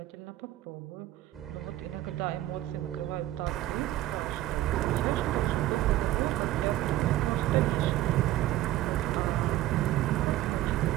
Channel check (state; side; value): quieter; left; 14.7 dB